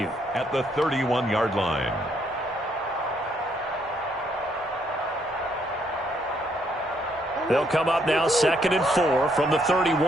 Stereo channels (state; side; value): normal; both; correlation 0.71